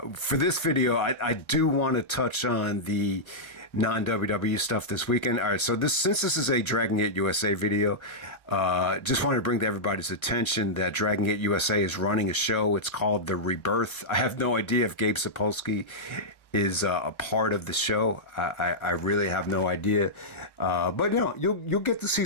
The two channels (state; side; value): late; right; 1.1 ms